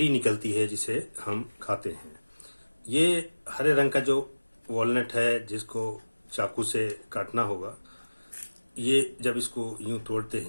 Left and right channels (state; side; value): inverted; both; correlation -1.00